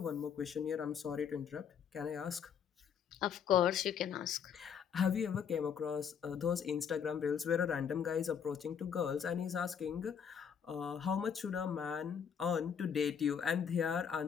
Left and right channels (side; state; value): right; quieter; 7.5 dB